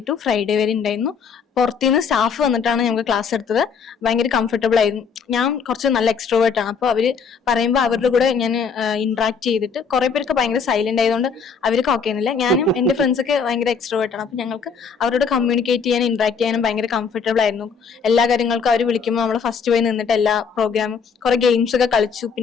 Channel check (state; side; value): quieter; right; 5.9 dB